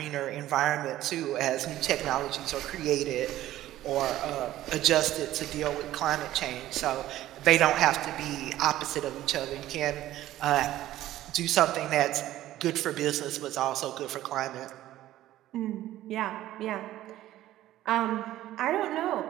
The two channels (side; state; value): left; quieter; 14.2 dB